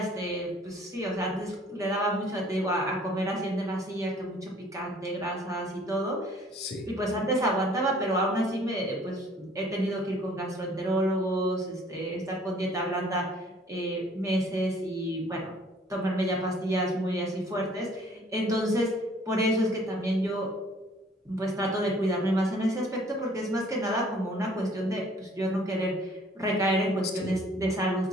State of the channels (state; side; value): normal; both; correlation 0.56